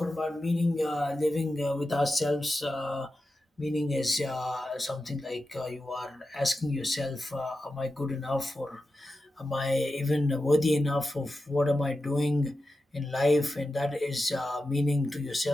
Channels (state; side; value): normal; both; correlation 0.91